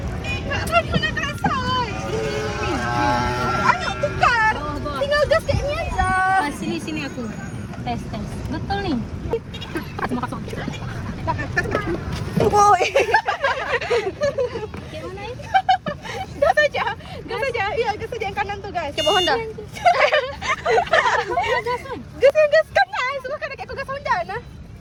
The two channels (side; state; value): both; identical; correlation 1.00